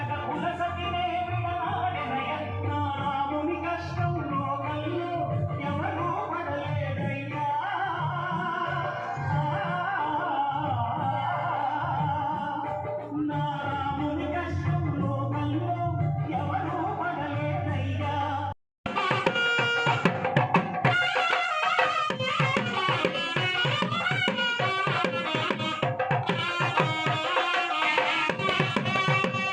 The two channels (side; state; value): both; identical; correlation 1.00